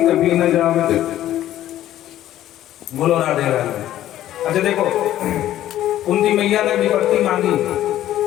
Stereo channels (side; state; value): right; quieter; 12.9 dB